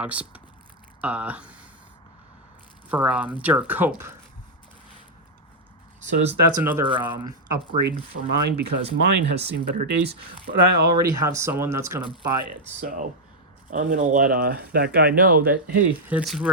for Derek Cope. So that's another upgrade for mine because mine has seen better days, but I already have someone that's going to buy it. So I'm going to let that guy know that, hey, it's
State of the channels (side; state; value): both; normal; correlation -0.03